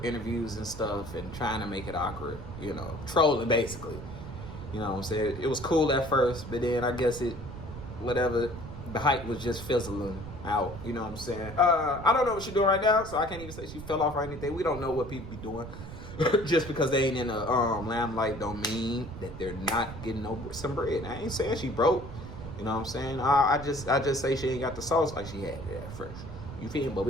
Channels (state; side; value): noise; right; rumble, 11 dB below the sound